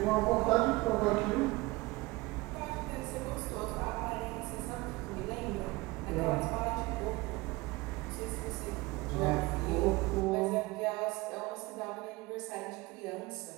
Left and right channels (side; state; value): left; quieter; 21.9 dB